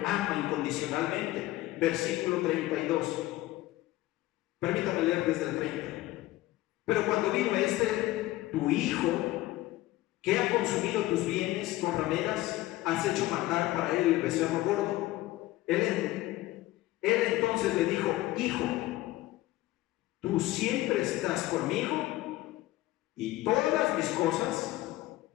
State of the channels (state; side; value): quieter; right; 17.1 dB